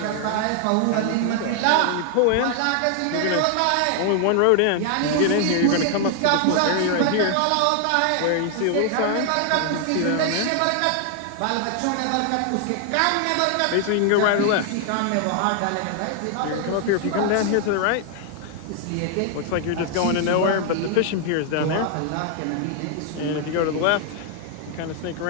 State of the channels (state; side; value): different; both; correlation 0.00